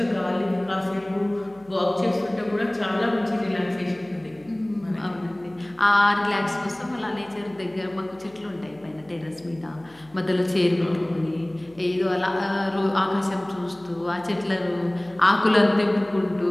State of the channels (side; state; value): left; noise; hum, 28 dB below the sound